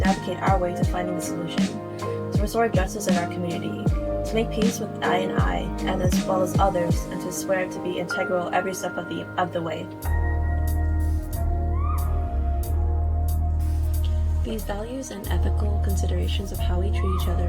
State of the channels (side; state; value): both; identical; correlation 1.00